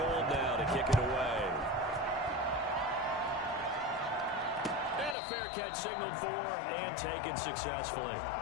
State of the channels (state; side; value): drops out; right; at 5.2 s